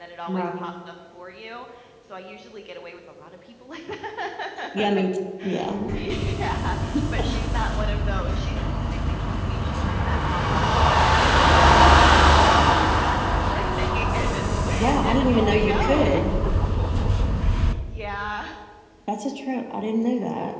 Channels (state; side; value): identical; both; correlation 1.00